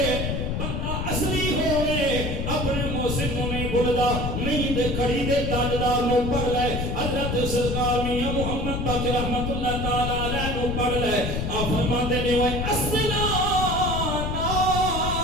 بندہ اصلی ہوئے اپنے محسن نو نہیں بھولدا. نہیں تے کھڑی دے تاجدار نو پڑھ لے, حضرت سرکار میاں محمد پاک رحمت اللہ تعالی علیہ نو پڑھ لے. آپ فرماتے نے وہ اصلا نال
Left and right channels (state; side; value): noise; left; rumble, 2 dB below the sound